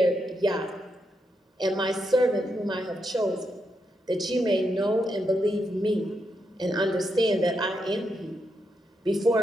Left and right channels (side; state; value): both; normal; correlation 0.82